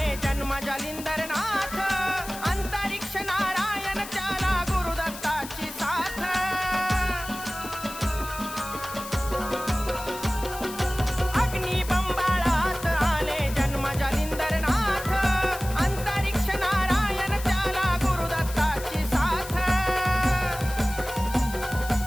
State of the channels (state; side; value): noise; left; hiss, 12 dB below the sound